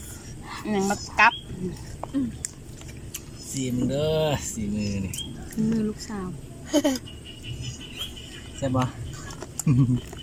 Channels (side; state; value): both; identical; correlation 1.00